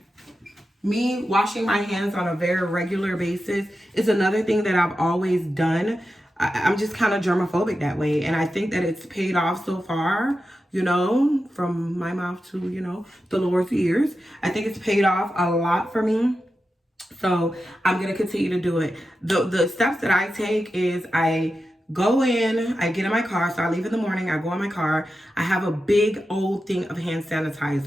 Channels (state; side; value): normal; both; correlation 0.91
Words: Me washing my hands on a very regular basis is another thing that I've always done. I'm just kind of germophobic that way. And I think that it's paid off so far, from my mouth to, the Lord's ears. I think it's paid off a lot for me. So I'm gonna continue to do it. The steps that I take is I go in, I get in my car. So I leave in the morning, I go in my car. I have a big old thing of hand